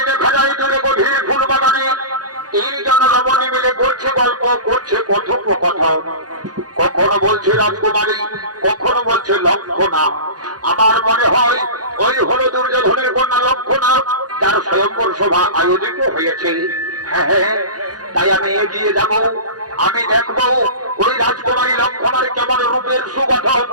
দেখা যায় দূরে গভীর ফুল বাগানে তিনজন রমণী মিলে করছে গল্প, করছে কথোপকথন। কখনো বলছে রাজকুমারী, কখনো বলছে লক্ষণা। আমার মনে হয় ওই হলো দুর্যোধনের কন্যা লক্ষণা, তার স্বয়ংবর সভা আয়োজিত হয়েছে। হ্যাঁ, তাই আমি এগিয়ে যাব, আমি দেখবো ওই রাজকুমারী লক্ষণার কেমন রূপের সুগঠন,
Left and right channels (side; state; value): left; late; 0.69 ms